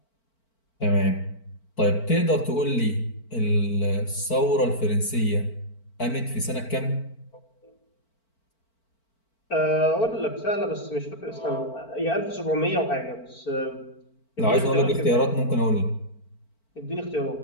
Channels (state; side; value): late; right; 4.5 ms